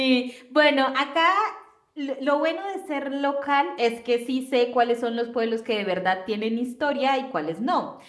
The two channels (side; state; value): both; identical; correlation 1.00